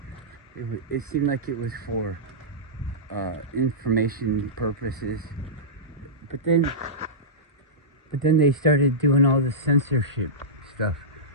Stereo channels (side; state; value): both; normal; correlation -0.16